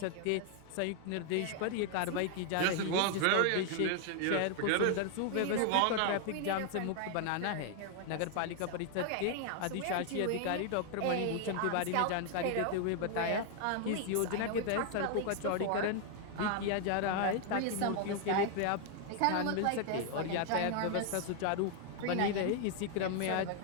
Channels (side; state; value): both; different; correlation 0.00